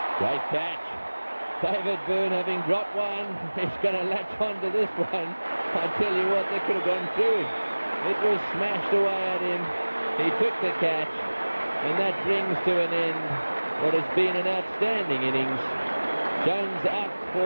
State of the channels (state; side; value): inverted; both; correlation -1.00